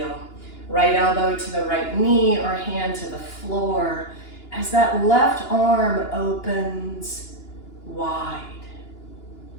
Right elbow to the right knee or hand to the floor as that left arm opens wide.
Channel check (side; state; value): right; late; 2.9 ms